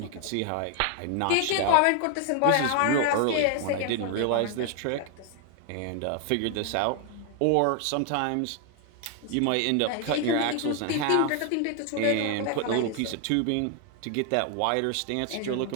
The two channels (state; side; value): different; both; correlation 0.01